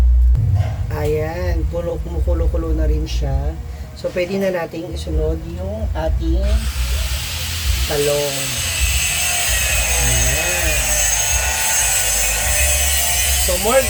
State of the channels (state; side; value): identical; both; correlation 1.00